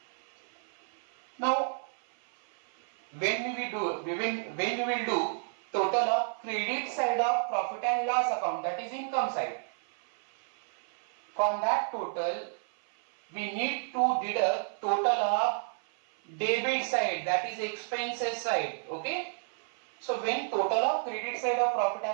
Now when we will do total of credit side of profit and loss account, that is income side, from that total we need to deduct total of debit side, that is expenses side. Okay, so when total of credit side of profit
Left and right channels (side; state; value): left; silent; 57 dB below the other